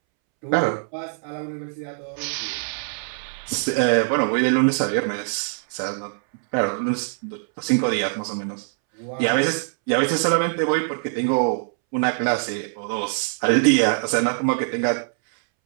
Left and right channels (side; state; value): left; silent; 63 dB below the other